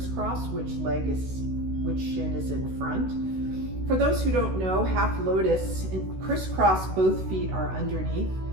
which shin is in front. For those who don't know, half lotus, in crisscross, both feet are underneath.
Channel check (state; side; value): late; left; 16 ms